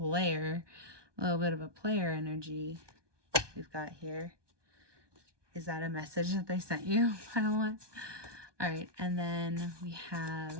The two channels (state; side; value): late; left; 1.2 ms